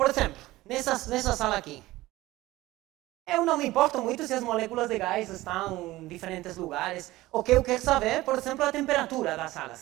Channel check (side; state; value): left; quieter; 17.9 dB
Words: exemplo, nessa sala aqui. Eu não me importo muito se as moléculas de gás estão em diferentes lugares. O que eu quero saber, por exemplo, a temperatura da sala,